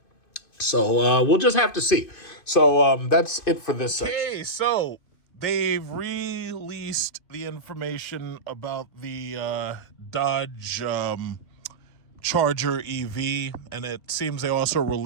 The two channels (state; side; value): late; right; 2.5 ms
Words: So we'll just have to see. So that's it for this section. Okay, so they've released the information about the Dodge Charger EV, and it seems they also